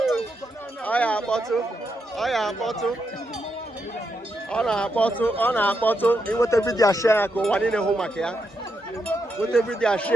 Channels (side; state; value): both; normal; correlation 0.82